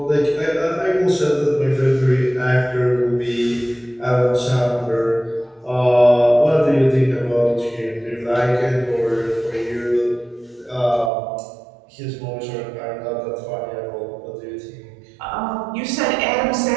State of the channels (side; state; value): left; drops out; at 11.1 s